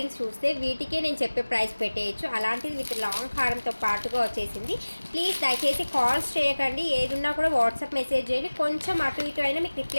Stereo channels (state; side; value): inverted; both; correlation -1.00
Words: చూస్తే వీటికే నేను చెప్పే ప్రైస్ పెట్టేయచ్చు. అలాంటిది విత్ లాంగ్ హారంతో పాటుగా వచ్చేసింది. ప్లీజ్ దయచేసి కాల్స్ చేయకండి. ఏదున్నా కూడా వాట్సాప్ మెసేజ్ చేయండి. కొంచెం అటు ఇటు అయినా మీకు